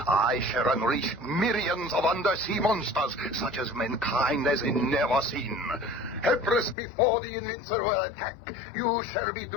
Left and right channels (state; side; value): drops out; right; at 6.8 s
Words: shall unleash millions of undersea monsters, such as mankind has never seen. Helpless before the invincible attack, you shall be